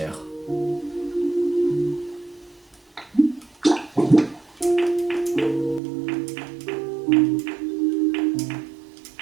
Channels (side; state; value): left; drops out; at 5.8 s